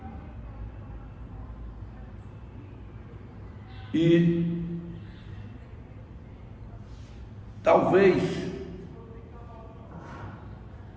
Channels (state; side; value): identical; both; correlation 1.00